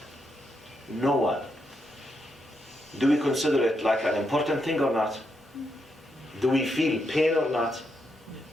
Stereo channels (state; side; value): normal; both; correlation 0.81